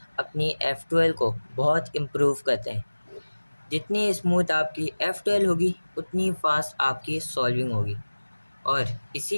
अपनी F12 को बहुत इम्प्रूव करते हैं। जितनी स्मूथ आपकी F12 होगी उतनी फास्ट आपकी सॉल्विंग होगी। और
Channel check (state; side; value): inverted; both; correlation -1.00